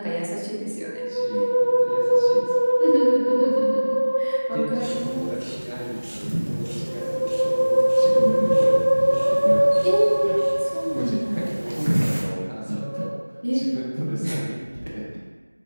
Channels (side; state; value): both; inverted; correlation -1.00